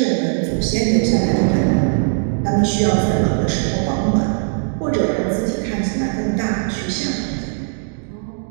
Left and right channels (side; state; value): left; silent; 62 dB below the other